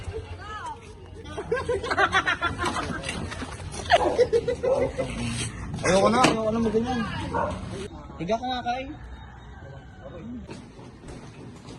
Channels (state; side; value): identical; both; correlation 1.00